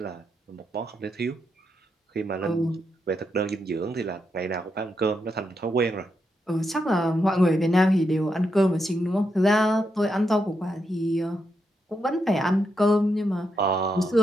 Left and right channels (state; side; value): normal; both; correlation 0.82